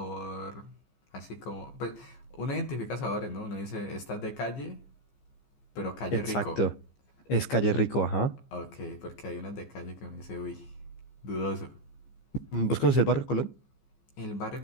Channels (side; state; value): right; late; 15 ms